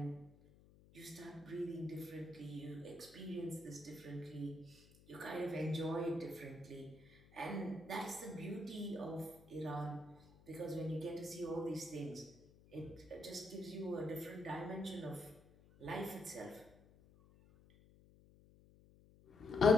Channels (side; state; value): left; noise; hum, 24 dB below the sound